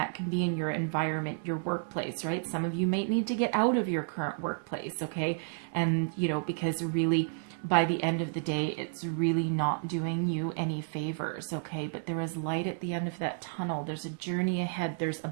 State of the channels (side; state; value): left; silent; digital silence